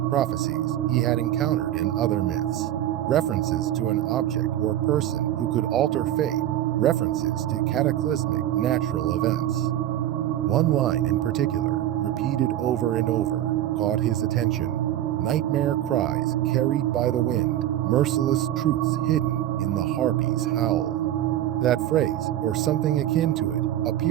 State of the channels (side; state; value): left; quieter; 12.5 dB